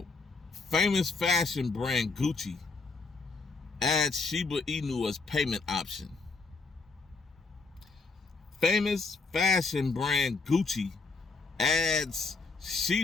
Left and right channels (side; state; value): right; quieter; 4.1 dB